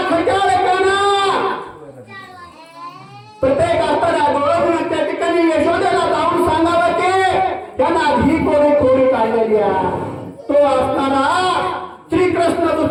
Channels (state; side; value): identical; both; correlation 1.00